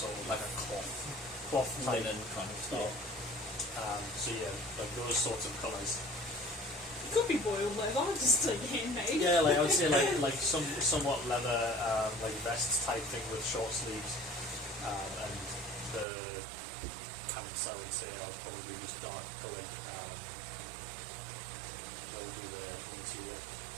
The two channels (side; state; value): left; drops out; at 16.1 s